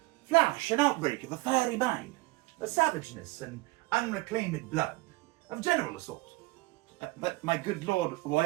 flash and outbreak of a fiery mind, the savageness and unreclaimed blood of general assault. But, my good lord,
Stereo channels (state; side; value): quieter; left; 22.0 dB